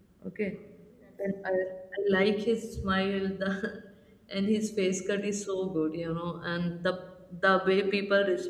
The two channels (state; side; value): identical; both; correlation 1.00